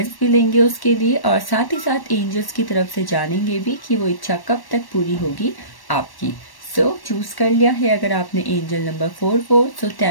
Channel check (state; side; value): late; right; 1.1 ms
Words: भी लेंगे उसके लिए, और साथ ही साथ एंजल्स की तरफ से जानेंगे भी कि वो इच्छा कब तक पूरी होगी आपकी। सो चूज कर लिया है अगर आपने एंजल नंबर 44। सो